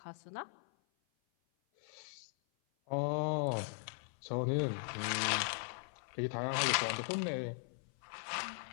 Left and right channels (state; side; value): silent; right; 52 dB below the other